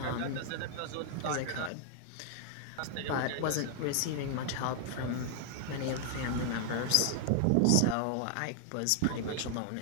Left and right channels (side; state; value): both; different; correlation 0.00